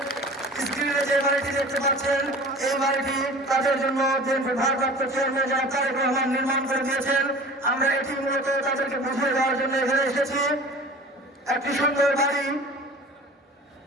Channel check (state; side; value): normal; both; correlation 0.40